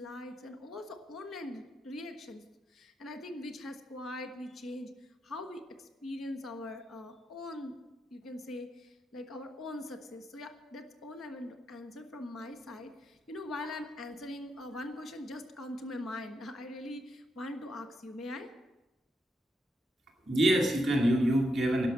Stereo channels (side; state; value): both; normal; correlation 0.83